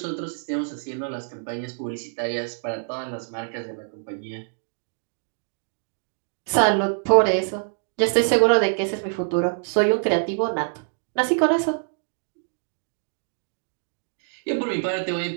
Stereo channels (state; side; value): silent; left; digital silence